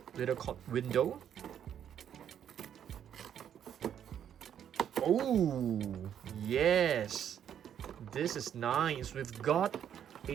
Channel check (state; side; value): quieter; left; 9.3 dB